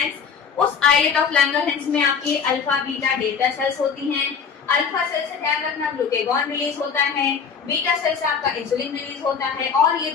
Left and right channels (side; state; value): right; quieter; 6.3 dB